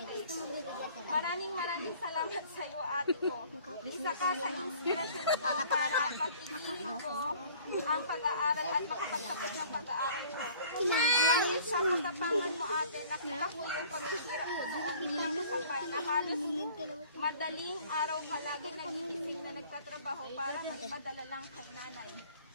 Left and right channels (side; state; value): both; inverted; correlation -0.51